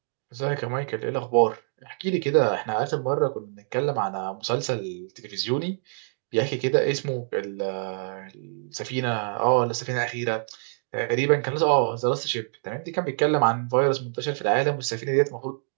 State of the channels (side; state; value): left; silent; digital silence